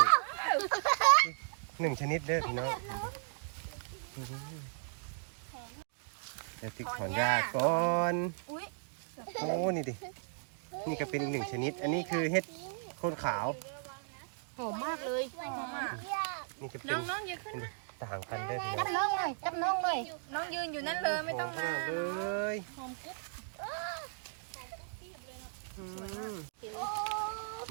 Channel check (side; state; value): left; silent; digital silence